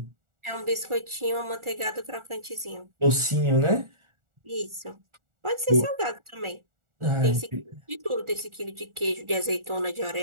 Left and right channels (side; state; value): left; late; 1.4 ms